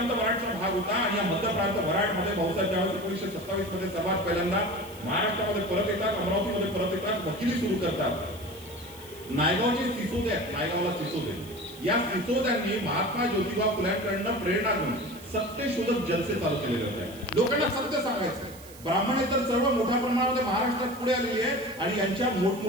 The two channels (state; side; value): noise; right; hiss, 20 dB below the sound